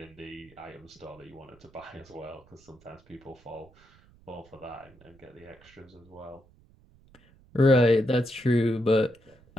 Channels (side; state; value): right; noise; rumble, 27 dB below the sound